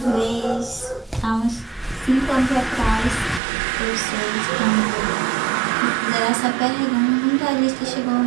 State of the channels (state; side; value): drops out; left; at 3.4 s